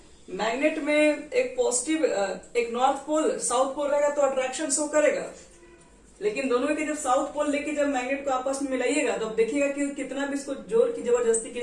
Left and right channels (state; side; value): identical; both; correlation 1.00